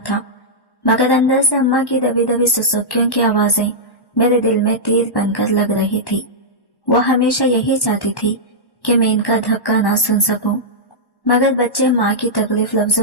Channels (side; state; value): right; late; 1.1 ms